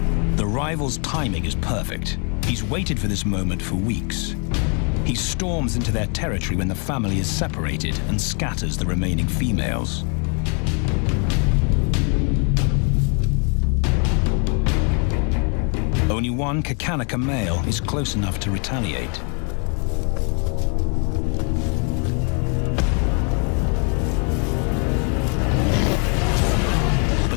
The rival's timing is perfect. He's waited for this moment for weeks. He storms into their territory when the family is separated and scatters the remaining females. Only one Khatarnak male is close enough to retaliate.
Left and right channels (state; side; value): quieter; right; 38.4 dB